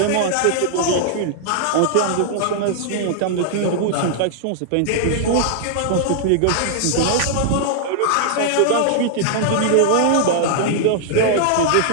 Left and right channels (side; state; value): both; different; correlation -0.01